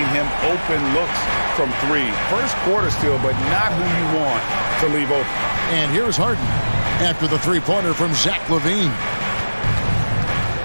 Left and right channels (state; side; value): inverted; both; correlation -1.00